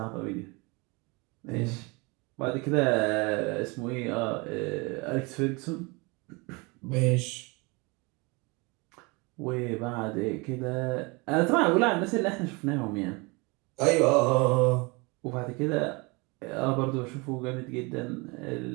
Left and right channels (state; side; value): quieter; left; 27.6 dB